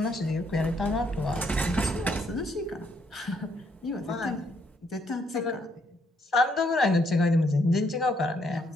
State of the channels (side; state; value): both; normal; correlation 0.72